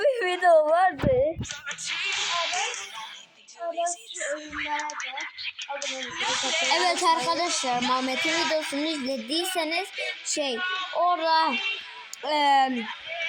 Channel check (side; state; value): both; identical; correlation 1.00